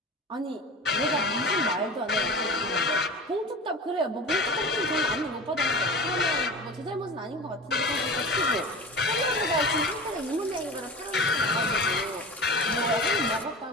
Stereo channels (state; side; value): normal; both; correlation 0.33